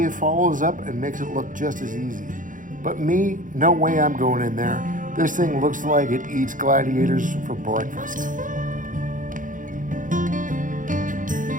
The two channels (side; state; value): left; late; 0.38 ms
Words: follows up and makes it look just as easy. But me, no way I'm going in there. This thing looks like it eats gladiators for breakfast.